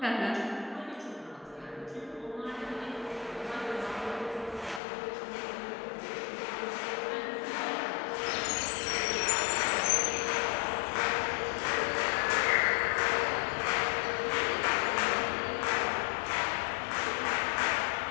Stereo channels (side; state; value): right; drops out; at 4.8 s